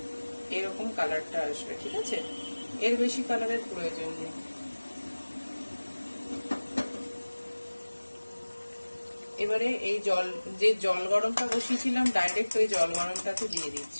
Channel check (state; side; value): inverted; both; correlation -1.00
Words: এরকম কালারটা আসবে, ঠিক আছে? এর বেশি কালারের প্রয়োজন নেই। এবারে এই যে জল গরমটা বসিয়েছিলাম, ডাইরেক্ট ওই জল গরমটাতে দিয়ে